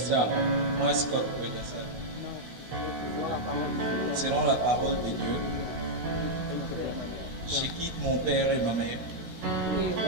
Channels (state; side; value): late; left; 16 ms